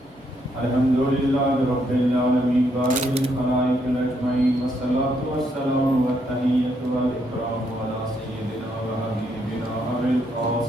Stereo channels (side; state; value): both; normal; correlation 0.74